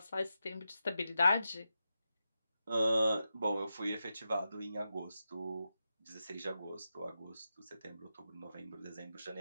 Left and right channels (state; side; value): inverted; both; correlation -0.89